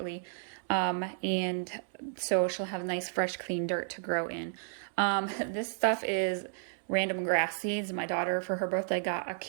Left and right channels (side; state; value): left; silent; digital silence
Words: And so she'll have nice, fresh, clean dirt to grow in. This stuff is random grass seeds. My daughter, for her birthday, got a